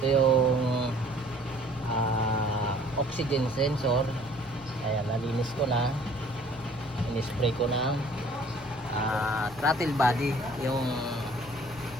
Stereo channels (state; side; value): noise; left; rumble, 19 dB below the sound